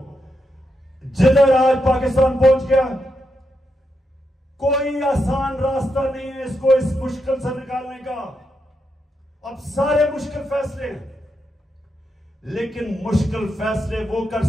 जिधर आज पाकिस्तान पहुंच गया, कोई आसान रास्ता नहीं है इसको इस मुश्किल से निकालने का। अब सारे मुश्किल फैसले हैं, लेकिन मुश्किल फैसले वो कर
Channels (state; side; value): normal; both; correlation 0.84